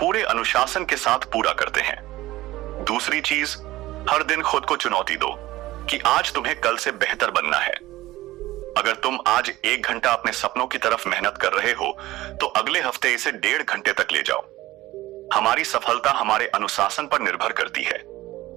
अनुशासन के साथ पूरा करते हैं। दूसरी चीज, हर दिन खुद को चुनौती दो कि आज तुम्हें कल से बेहतर बनना है। अगर तुम आज 1 घंटा अपने सपनों की तरफ मेहनत कर रहे हो, तो अगले हफ्ते इसे 1.5 घंटे तक ले जाओ। हमारी सफलता हमारे अनुशासन पर निर्भर करती है।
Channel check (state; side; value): quieter; left; 17.2 dB